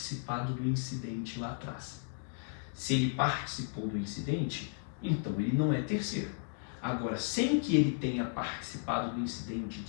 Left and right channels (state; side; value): silent; right; digital silence